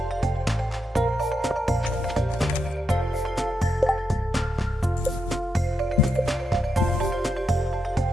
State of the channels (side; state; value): both; normal; correlation 0.84